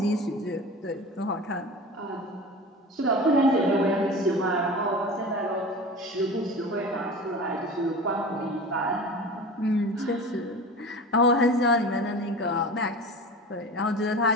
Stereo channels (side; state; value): both; normal; correlation 0.34